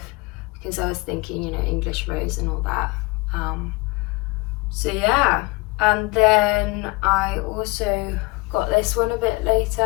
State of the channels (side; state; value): right; quieter; 24.2 dB